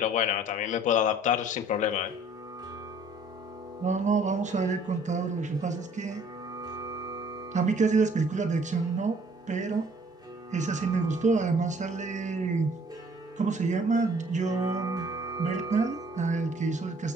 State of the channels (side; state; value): both; normal; correlation 0.57